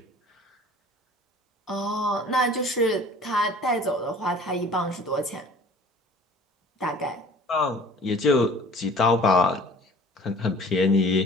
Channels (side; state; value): both; normal; correlation 0.47